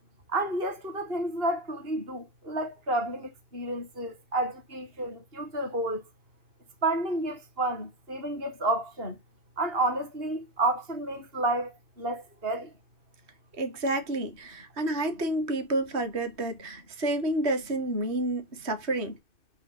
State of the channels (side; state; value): left; late; 2.6 ms